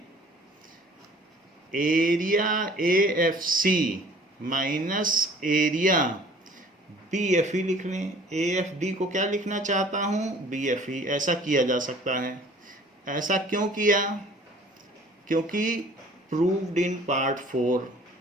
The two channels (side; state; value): both; normal; correlation 0.51